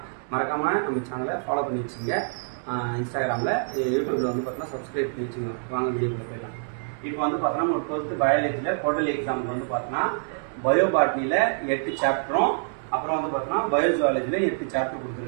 மறக்காம நம்ம சேனலை ஃபாலோ பண்ணி வச்சுங்க. இன்ஸ்டாகிராம்ல யூடியூப்ல வந்து பார்த்தா சப்ஸ்கிரைப் பண்ணி வச்சுங்க. வாங்க வீடியோக்குள்ள போயிடலாம். இப்போ வந்து பார்த்தோன்னா நம்ம 12th பயாலஜில குவார்டர்லி எக்ஸாம் வந்து பார்த்தோன்னா பயோபாட்னில 8 சாப்டரும் அப்புறம் வந்து பார்த்தோன்னா பயோஜுவாலஜில 8 சாப்டர்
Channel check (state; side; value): silent; left; digital silence